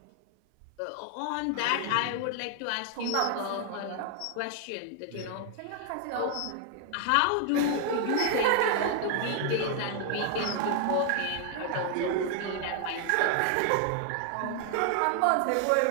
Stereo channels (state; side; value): different; both; correlation 0.00